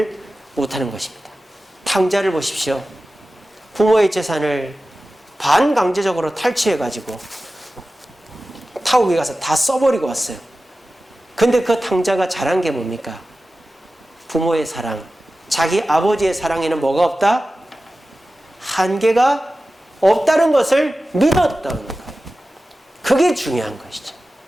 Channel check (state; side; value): normal; both; correlation 0.95